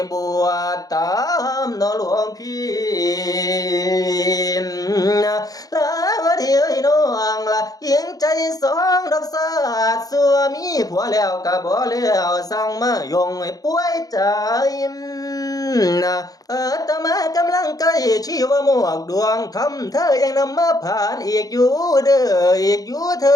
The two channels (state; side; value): late; right; 0.18 ms